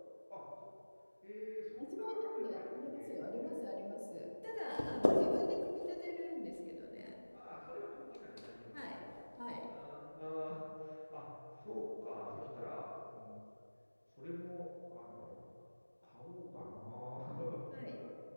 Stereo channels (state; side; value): inverted; both; correlation -1.00